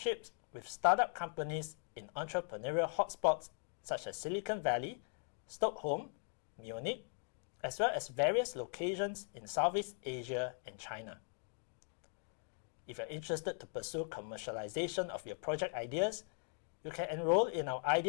with startup companies in entrepreneurial hotspots such as Silicon Valley, Stockholm, Munich, as well as various locations in Southeast Asia and China. If you're interested to pursue commercialization of your project ideas, you can enroll in our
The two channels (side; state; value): right; silent; 51 dB below the other